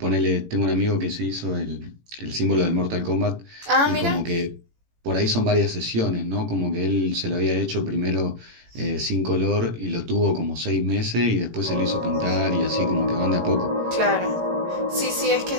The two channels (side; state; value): left; late; 18 ms